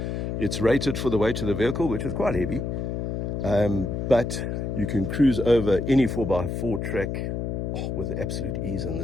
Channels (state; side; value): noise; left; hum, 2 dB below the sound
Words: It's rated for the weight of the vehicle, which is quite heavy. But you can cruise over any 4x4 track with absolute ease in